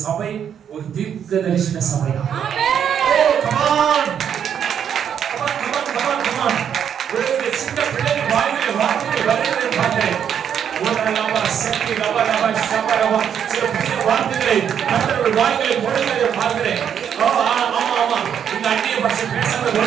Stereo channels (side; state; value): left; quieter; 8.5 dB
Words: ஒரு தீர்க்க தரிசன சபை. ஆமென். கமான் ஒரு சின்ன பிள்ளைக்கு வாயிலே வார்த்தை வருகிறதை பார்த்தேன். ஒரு நாளாக சக்தி லவலவ ஷபரவ சில புதிய வார்த்தைகளை கர்த்தருடைய வாயிலே போடுகிறதை பார்க்கிறேன். ஆமா இந்த அந்நிய பாஷை பேசாத